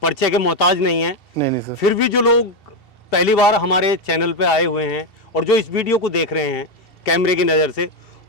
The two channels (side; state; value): right; late; 2.7 ms